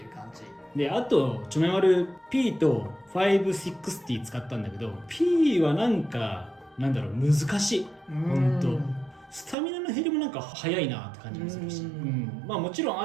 う感じで、あとチョメマル P と560使ったんだけど、 P はなんかなんだろう、難しい。ほんとスタミナの減りもなんか早いなって感じもするし、まあもちろん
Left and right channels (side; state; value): left; drops out; at 9.6 s